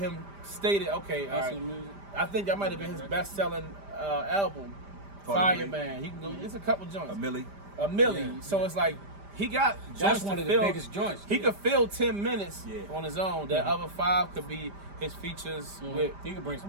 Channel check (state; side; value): late; left; 5.0 ms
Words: stay there. Okay, all That's right. the music. I think that might have been his best-selling album, Carter Fireman. He can go. It's a couple joints. A Millie. A milli. So it's like he got That's joints one to of the fill. biggest joints. He could fill 10 minutes Yeah. on his own. That other 5 could be his features with He can bring